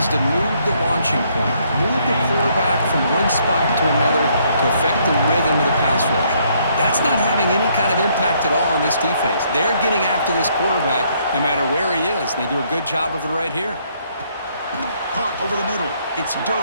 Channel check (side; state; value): both; inverted; correlation -0.69